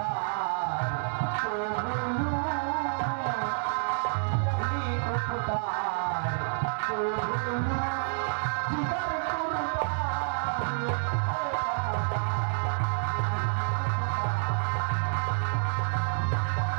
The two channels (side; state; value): left; silent; 59 dB below the other